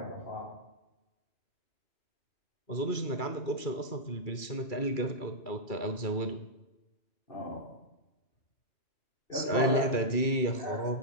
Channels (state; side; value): late; right; 2.3 ms